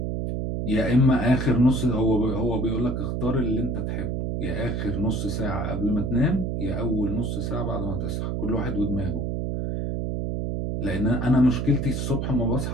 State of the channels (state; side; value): noise; right; hum, 1 dB below the sound